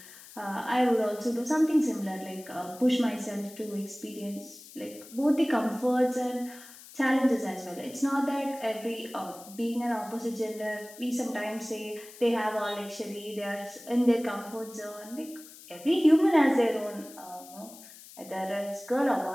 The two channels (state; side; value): noise; left; hiss, 18 dB below the sound